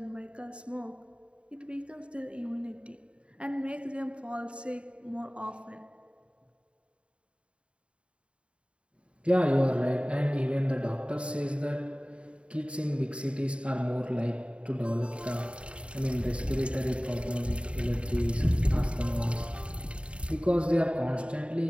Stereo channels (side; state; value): left; late; 0.058 ms